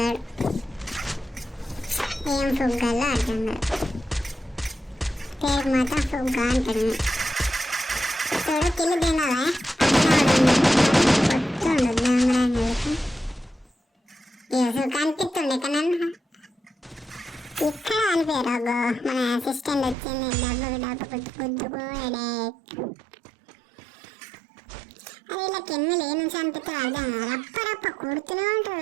ఏం ఫుగ్గాలో అర్థం కాదు. పేరు మాత్రం ఫుగ్గా అంటాడు. చూడు కిల్లు తినాలా పొత్తుండు దొంగరానికి కనిపిస్తుండే కానీ ఇక్కడ అనిపోయారు. అగో మన అసిస్టెంట్ వచ్చింది డబ్బు గుద్దుకోడే. అదే ఇలా కెన్నులు ఏ నుంచి అనిపిస్తే అర్థం రప్ప కొడుతూనే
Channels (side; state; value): left; drops out; at 20.0 s